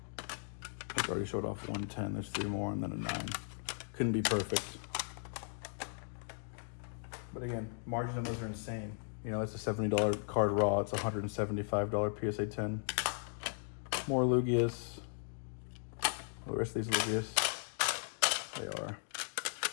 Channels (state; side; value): silent; right; digital silence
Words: I already showed off 110. There's 3 more and then a 9. Couldn't be perfect. But again, margins on those are insane. You know, it's a $70 card raw. It's a $175 PSA 10. More Lugias. The rest of these Lugias, they are